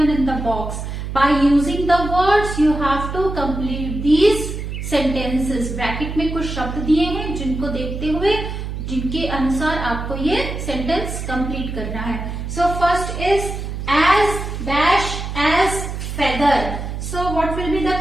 in the box. By using the words you have to complete these sentences. Bracket में कुछ शब्द दिए हैं जिनको देखते हुए जिनके अनुसार आपको ये sentence complete करना है. So first is as dash as feather. So what will be the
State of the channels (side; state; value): right; noise; hum, 6 dB below the sound